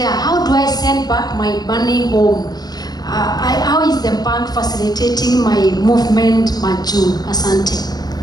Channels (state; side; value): late; right; 0.19 ms